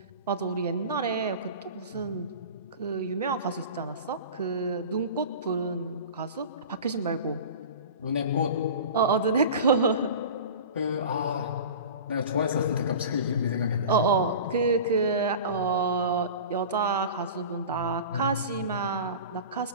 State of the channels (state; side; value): inverted; both; correlation -0.35